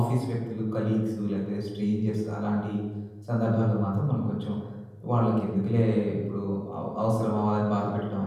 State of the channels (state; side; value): identical; both; correlation 1.00